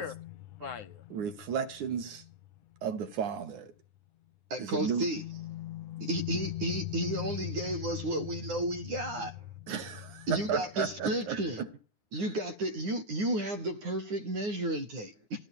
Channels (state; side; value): late; left; 9.7 ms